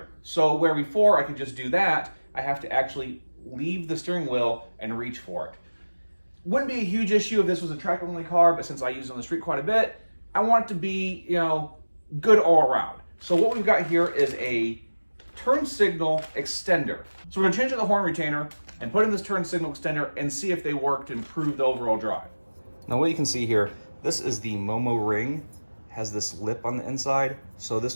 So where before I could just do that, I have to actually leave the steering wheel and reach for it. Wouldn't be a huge issue if this was a track only car, but since I use it on the street quite a bit, I want it to be, good all around. So what we've got here is a turn signal extender. So we're gonna change out the horn retainer and put in this turn signal extender and see if they work to improve the overall drive. Now what you can see here, this is the Momo ring, has this lip on the inside. So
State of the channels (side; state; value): both; inverted; correlation -1.00